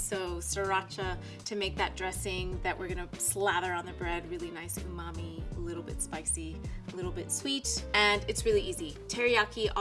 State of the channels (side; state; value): both; identical; correlation 1.00